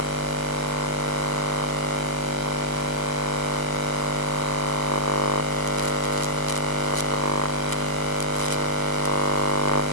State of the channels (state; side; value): late; left; 1.0 ms